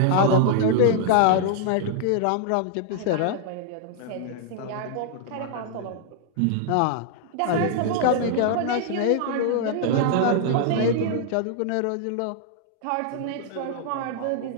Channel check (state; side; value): different; both; correlation -0.01